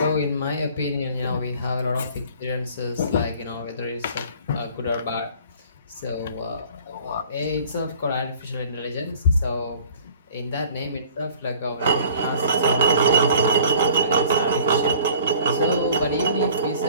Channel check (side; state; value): both; inverted; correlation -0.50